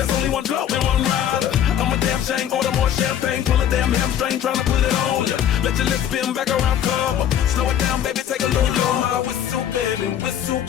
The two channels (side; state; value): right; quieter; 10.0 dB